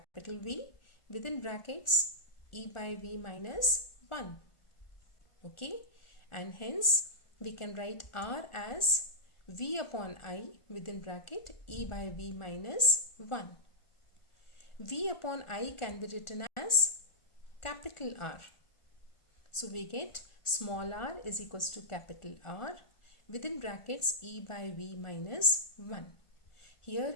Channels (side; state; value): right; late; 1.4 ms